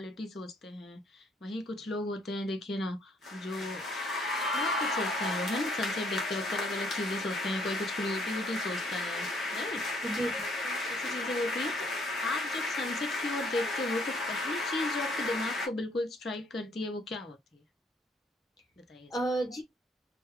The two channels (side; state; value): both; normal; correlation 0.65